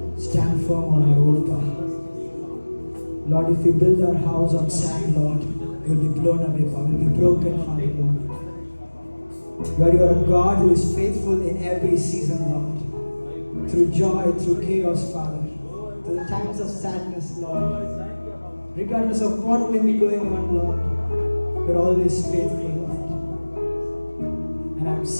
stand firm on our own power. Lord, if we build our house on sand, Lord, we will be blown away, Father. We will be broken, Father, Lord. Lord, you are a God who is faithful in every season, Lord. Through joy, through chaos, Father. Through the times of sadness, Lord. Regardless of what may be going on, Lord, you're always faithful, Lord. And I'm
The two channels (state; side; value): inverted; both; correlation -1.00